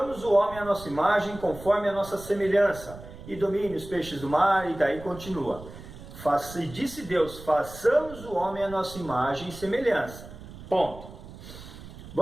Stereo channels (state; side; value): noise; right; rumble, 15 dB below the sound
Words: o homem à nossa imagem, conforme a nossa semelhança, e domine os peixes do mar, e daí continua. E disse Deus: façamos o homem à nossa imagem e semelhança. Ponto.